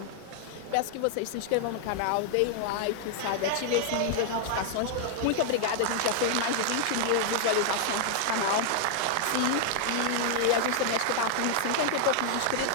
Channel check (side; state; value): both; different; correlation 0.00